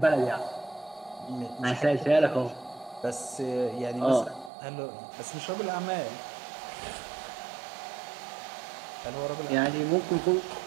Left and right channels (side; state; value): left; drops out; at 4.5 s